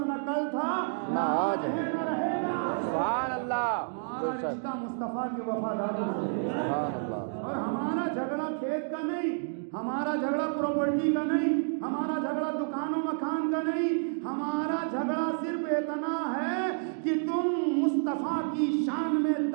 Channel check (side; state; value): left; silent; digital silence